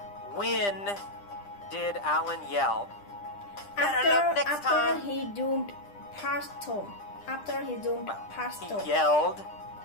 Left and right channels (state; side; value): late; right; 10 ms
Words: When did Alan yell, "Better luck next after time"? he zoomed past Tom. After he zoomed past He Tom. yelled